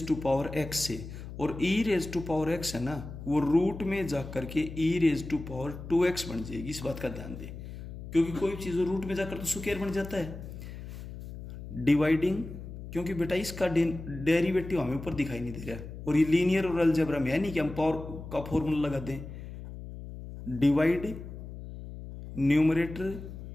से, और e⁻x है ना, वो रूट में जा करके e⁻2x बन जाएगी। इस बात का ध्यान दें, क्योंकि कोई चीज़ रूट में जाकर तो स्क्वायर बन जाता है। डिवाइडिंग, क्योंकि बेटा इसका डेरिवेटिव हमें ऊपर दिखाई नहीं दे रहा है, और ये लीनियर और अलजेब्रा में है नहीं कि हम पावर का फॉर्मूला लगा दें। Divide numerator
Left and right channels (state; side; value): noise; left; hum, 11 dB below the sound